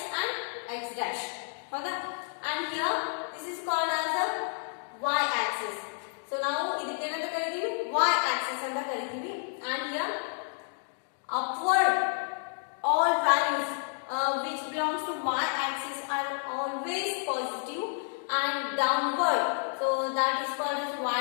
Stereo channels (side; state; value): right; silent; 58 dB below the other